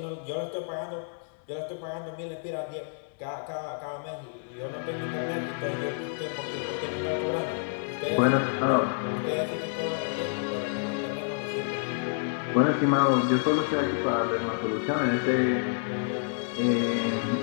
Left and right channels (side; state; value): right; silent; digital silence